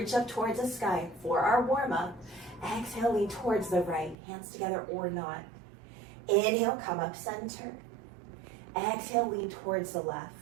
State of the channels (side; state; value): left; drops out; at 4.2 s